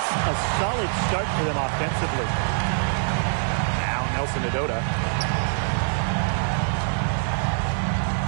a solid start for them offensively. Now Nelson Adota.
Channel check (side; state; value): left; silent; digital silence